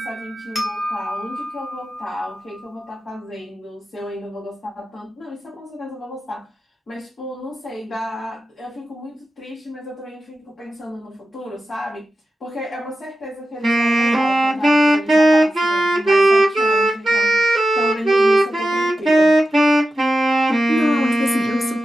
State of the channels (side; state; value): both; normal; correlation 0.92